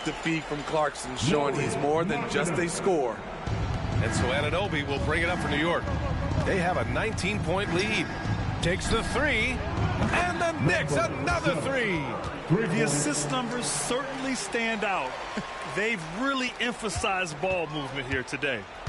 the feed from Clarkson, showing he's more than just a scorer. And so Anunoby will bring it up for New York. They have a 19-point lead. Takes the three. And the Knicks, another three. The assist numbers certainly stand out. They've really emphasized ball movement here today.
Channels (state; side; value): identical; both; correlation 1.00